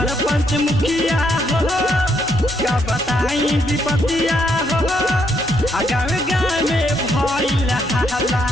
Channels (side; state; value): both; normal; correlation 0.74